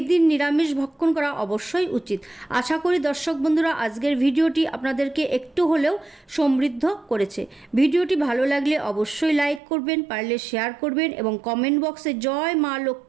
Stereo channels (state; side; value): drops out; left; at 9.6 s